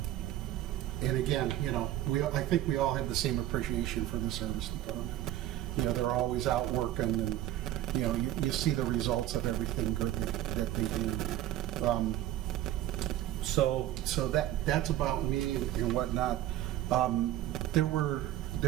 And again, you know, I think we all have the same appreciation for the service department. You know, they're always out working, and, you know, you see the results of everything good that they do. So that's about me and whatnot. There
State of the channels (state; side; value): quieter; left; 13.2 dB